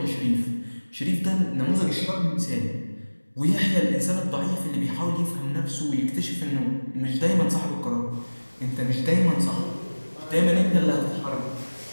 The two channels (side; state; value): both; inverted; correlation -1.00